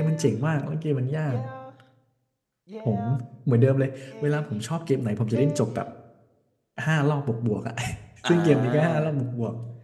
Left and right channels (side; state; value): both; identical; correlation 1.00